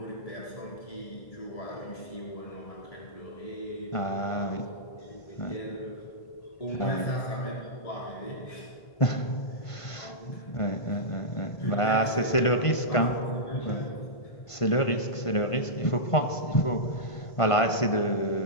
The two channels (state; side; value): late; right; 1.5 ms